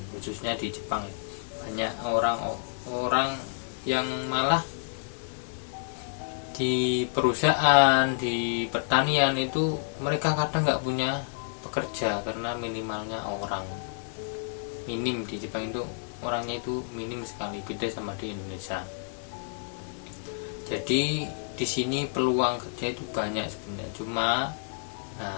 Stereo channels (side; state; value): right; silent; digital silence